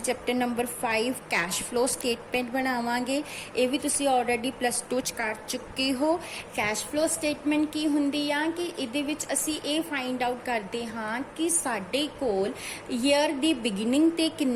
chapter number 5 cash flow statement ਬਣਾਵਾਂਗੇ। ਇਹ ਵੀ ਤੁਸੀਂ ਆਲਰੇਡੀ ਪਲੱਸ 2 ਚ ਕਰ ਚੁੱਕੇ ਹੋ। ਕੈਸ਼ ਫਲੋ ਸਟੇਟਮੈਂਟ ਕੀ ਹੁੰਦੀ ਆ ਕਿ ਇਹਦੇ ਵਿੱਚ ਅਸੀਂ ਇਹ ਫਾਈਂਡ ਆਊਟ ਕਰਦੇ ਹਾਂ ਕਿ ਸਾਡੇ ਕੋਲ ਈਅਰ ਦੀ ਬਿਗਿਨਿੰਗ ਤੇ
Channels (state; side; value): identical; both; correlation 1.00